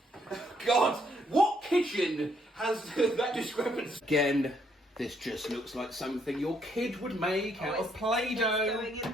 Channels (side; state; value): both; normal; correlation 0.71